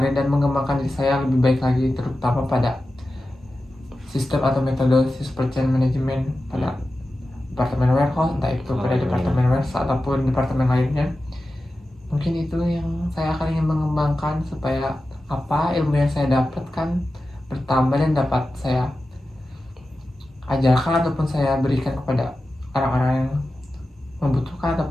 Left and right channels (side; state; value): both; normal; correlation 0.93